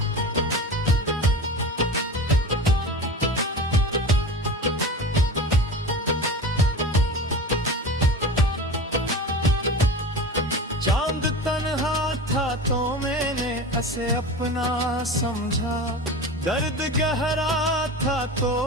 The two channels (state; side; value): normal; both; correlation 0.32